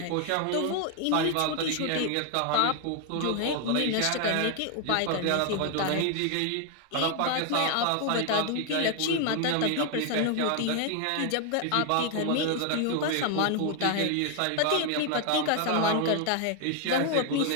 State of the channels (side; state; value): both; different; correlation 0.01